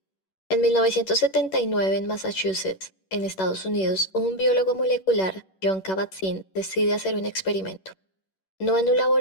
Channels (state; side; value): late; right; 11 ms